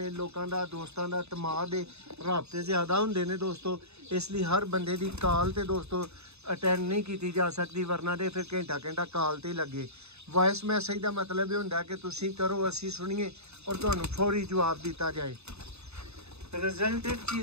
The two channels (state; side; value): late; left; 0.80 ms